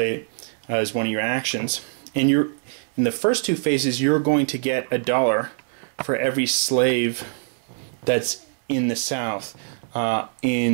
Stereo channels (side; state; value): left; silent; 60 dB below the other